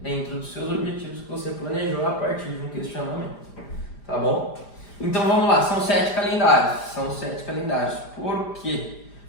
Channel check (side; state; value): right; late; 5.0 ms